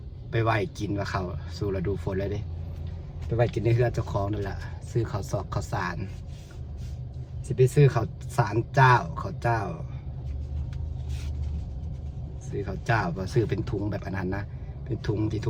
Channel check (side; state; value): both; identical; correlation 1.00